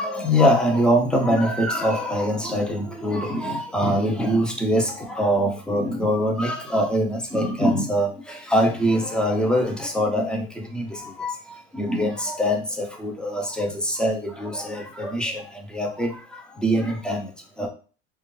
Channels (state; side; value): normal; both; correlation 0.57